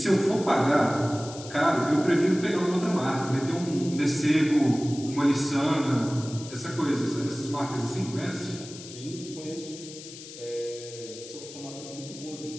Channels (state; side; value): noise; left; hiss, 14 dB below the sound